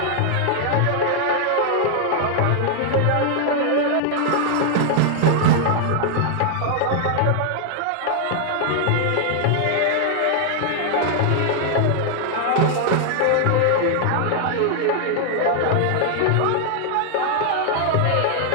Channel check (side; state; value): both; different; correlation 0.00